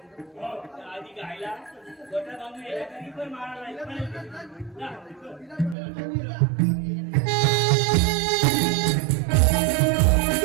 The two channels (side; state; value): left; drops out; at 5.8 s